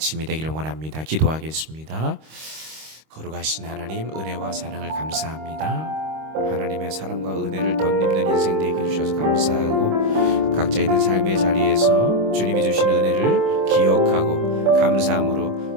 되기를 원합니다. 기도하겠습니다. 거룩하신 하나님, 은혜와 사랑을 감사합니다. 하나님의 사랑과 은혜를 덧입는 인생 되게 해주셔서 감사하고 각자 있는 삶의 자리에서 주님이 주신 은혜를 기억하고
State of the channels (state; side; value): late; left; 26 ms